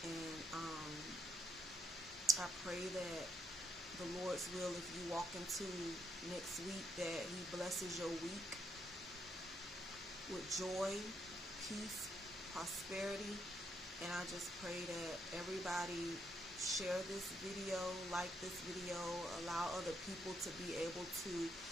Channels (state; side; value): normal; both; correlation 0.76